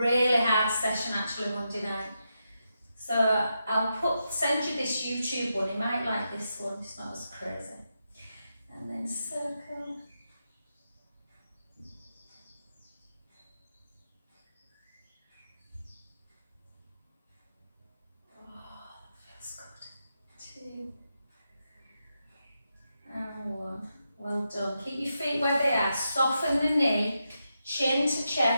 hard session actually Monday night. So I'll send you this YouTube one. You might like this one. It's not as crazy. And then circle. Oh, that feels good. 2 and 1. Well done. Keep your feet where they are. Soften the knee, chin to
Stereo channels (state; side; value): inverted; both; correlation -0.86